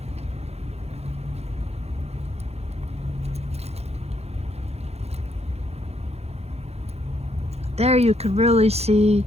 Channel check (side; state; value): left; late; 0.31 ms